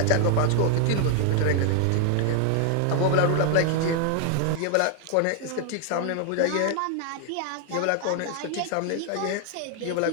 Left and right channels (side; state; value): both; different; correlation 0.00